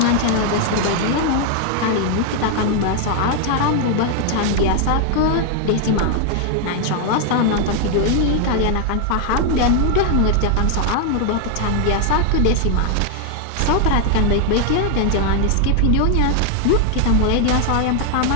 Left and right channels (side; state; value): both; different; correlation 0.00